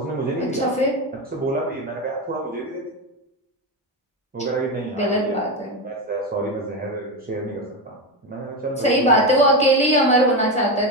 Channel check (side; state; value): both; normal; correlation 0.14